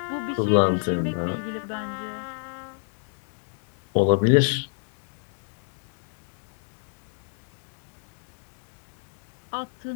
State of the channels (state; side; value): silent; right; digital silence